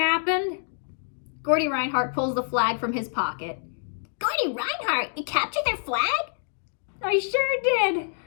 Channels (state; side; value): silent; right; digital silence